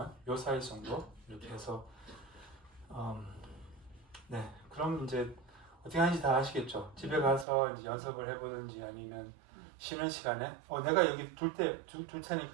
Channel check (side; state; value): left; drops out; at 7.5 s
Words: 요 사이즈 정도 이렇게 해서 네 그럼 이제 어떻게 하는지 다 아시겠죠? 집에 가서 이제 연습을 해보든지 아니면 쉬는 시간에 내가 여기 둘